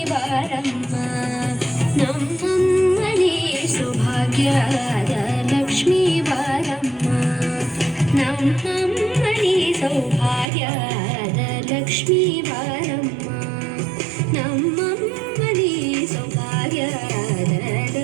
ಬಾರಮ್ಮ, ನಮ್ಮಮ್ಮನಿ ಸೌಭಾಗ್ಯದ ಲಕ್ಷ್ಮೀ ಬಾರಮ್ಮ, ನಮ್ಮಮ್ಮನಿ ಸೌಭಾಗ್ಯದ ಲಕ್ಷ್ಮೀ ಬಾರಮ್ಮ, ನಮ್ಮಮ್ಮನಿ ಸೌಭಾಗ್ಯದ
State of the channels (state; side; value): drops out; left; at 10.5 s